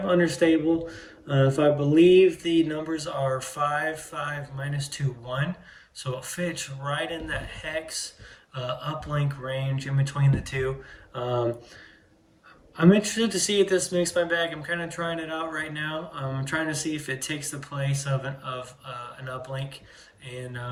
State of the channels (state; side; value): identical; both; correlation 1.00